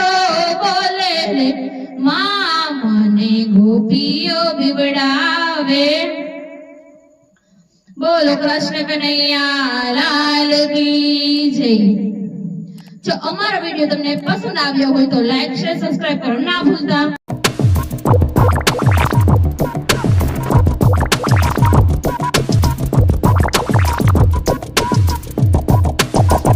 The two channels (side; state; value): both; identical; correlation 1.00